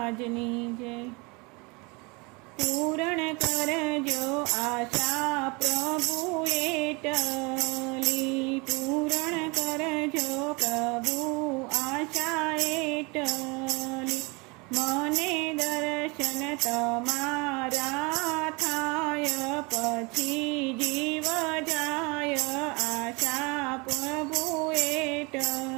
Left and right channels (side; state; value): left; quieter; 28.1 dB